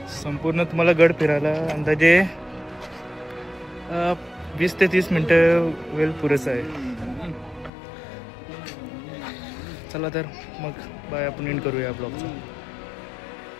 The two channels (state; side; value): drops out; right; at 7.7 s